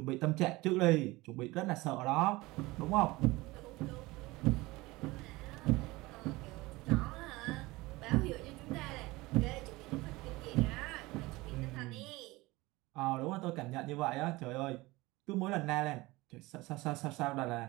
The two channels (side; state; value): left; quieter; 21.1 dB